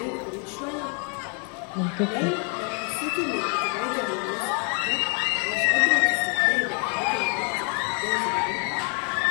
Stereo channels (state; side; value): quieter; right; 37.8 dB